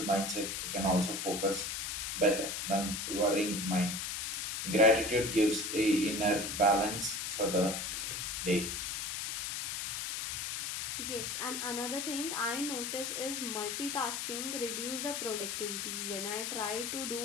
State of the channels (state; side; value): noise; left; hiss, 3 dB below the sound